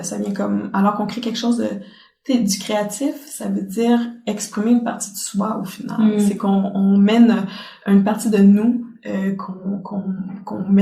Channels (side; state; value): both; identical; correlation 1.00